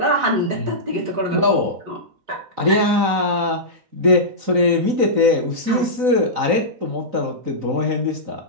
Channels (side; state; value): left; late; 3.9 ms